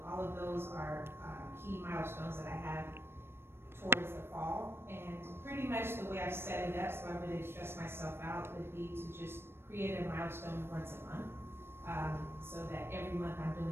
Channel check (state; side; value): late; left; 0.12 ms